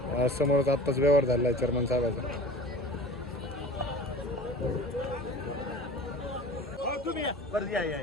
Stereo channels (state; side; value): normal; both; correlation 0.39